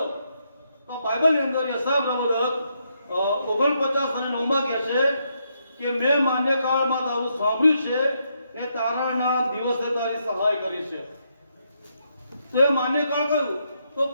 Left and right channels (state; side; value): inverted; both; correlation -0.78